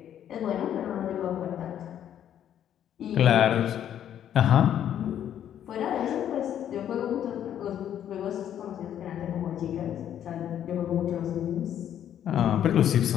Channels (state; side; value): quieter; right; 10.2 dB